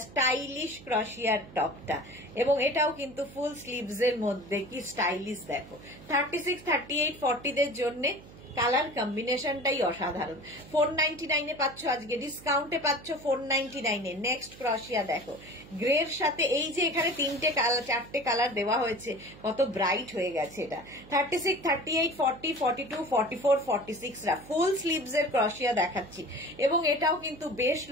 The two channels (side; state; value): right; noise; hum, 19 dB below the sound